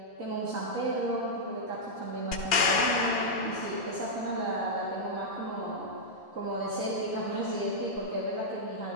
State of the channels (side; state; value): right; late; 2.4 ms